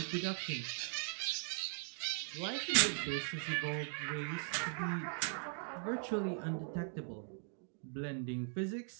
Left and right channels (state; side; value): silent; left; 51 dB below the other